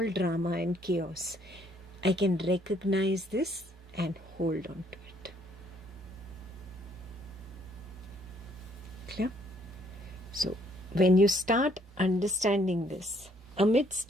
drama and chaos, I can recognize this and hold on to it. Clear? So, when you start understanding this, amidst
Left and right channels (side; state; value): both; normal; correlation 0.66